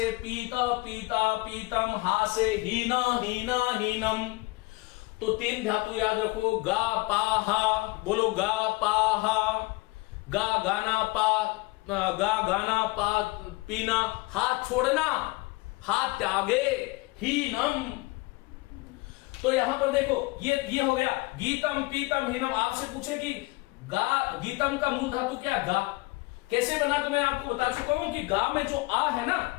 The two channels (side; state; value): right; quieter; 23.5 dB